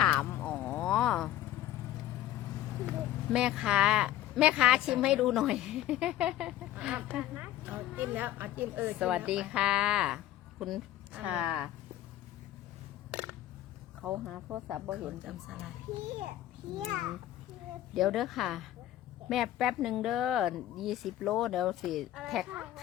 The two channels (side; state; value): right; quieter; 13.2 dB